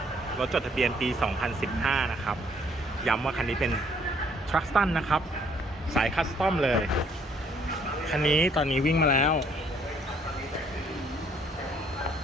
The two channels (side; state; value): both; normal; correlation 0.64